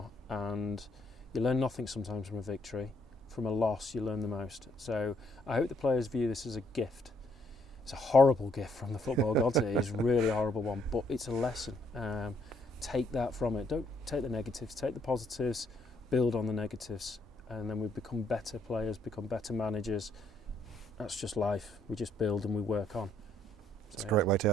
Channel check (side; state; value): both; normal; correlation 0.70